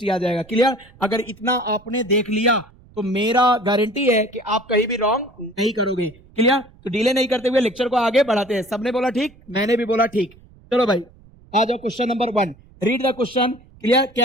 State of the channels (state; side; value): noise; right; rumble, 26 dB below the sound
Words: आ जाएगा। क्लियर? अगर इतना आपने देख लिया तो मेरा गारंटी है कि आप कहीं भी रॉन्ग नहीं करोगे। क्लियर? तो डिले नहीं करते हुए लेक्चर को आगे बढ़ाते हैं। सबने बोला ठीक, मैंने भी बोला ठीक। चलो भाई आ जाओ question number 1। Read the question. Clear?